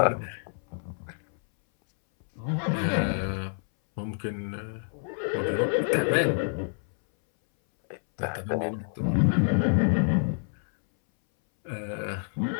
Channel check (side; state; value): right; silent; 60 dB below the other